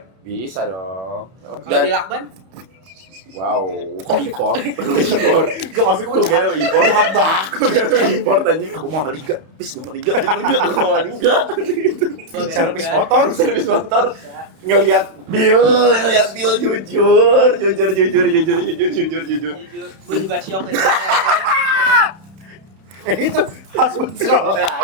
Bisa dong. Kalau di lakban, Wow, kok import? Gak maksud gue kira import. Jahat banget. Gue kira import anjing. Aku mau liga. Bis gue mau liga. Servis motor. Ngelihat Bill jujur. gue juga shock itu. Itu husband roll.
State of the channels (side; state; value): left; late; 31 ms